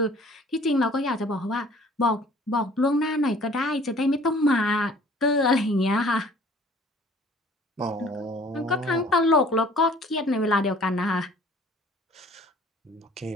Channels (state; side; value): normal; both; correlation 0.52